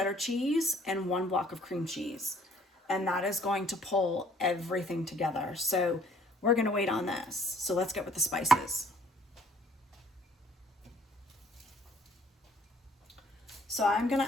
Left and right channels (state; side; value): normal; both; correlation 0.58